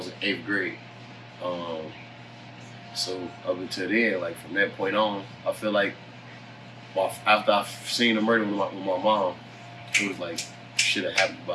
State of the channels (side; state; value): both; identical; correlation 1.00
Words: 8th grade. So up until then, like from that point on, I feel like after I've seen the murder with my mom, it was like shit had happened,